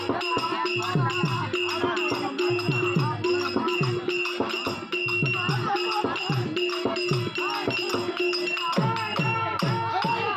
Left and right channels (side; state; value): both; identical; correlation 1.00